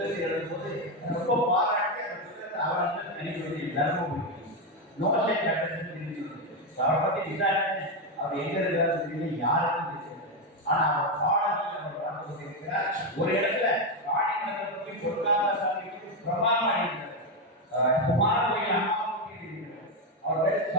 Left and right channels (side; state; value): both; normal; correlation 0.07